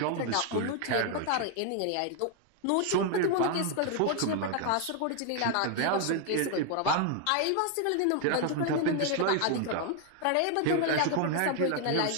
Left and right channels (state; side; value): different; both; correlation 0.00